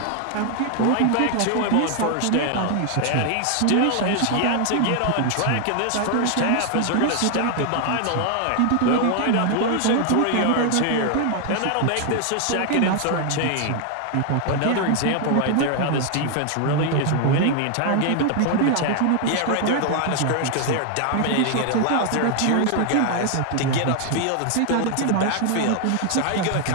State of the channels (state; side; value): different; both; correlation 0.00